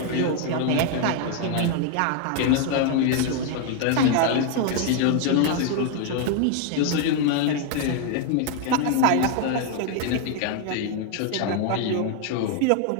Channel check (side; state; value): both; different; correlation 0.00